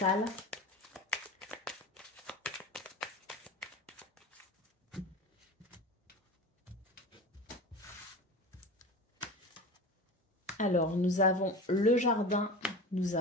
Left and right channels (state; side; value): normal; both; correlation 0.31